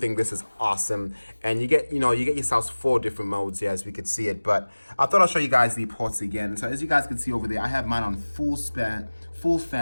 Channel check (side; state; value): both; inverted; correlation -1.00